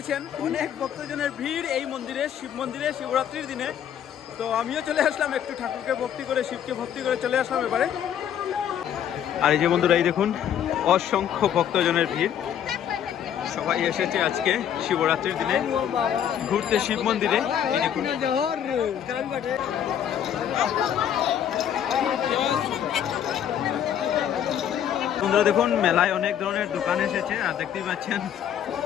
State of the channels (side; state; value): right; quieter; 9.6 dB